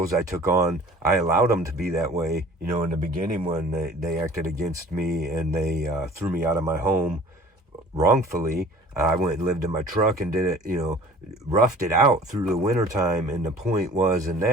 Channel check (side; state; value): both; normal; correlation 0.48